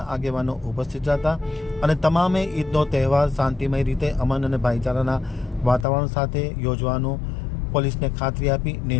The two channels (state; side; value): drops out; right; at 5.9 s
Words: આગેવાનો ઉપસ્થિત હતા અને તમામે ઈદનો તહેવાર શાંતિમય રીતે અમન અને ભાઈચારાના વાતાવરણ સાથે યોજવાનો પોલીસને ખાતરી આપી